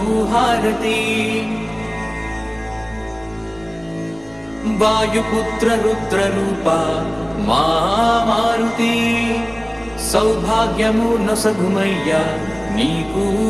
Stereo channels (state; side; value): noise; right; rumble, 25 dB below the sound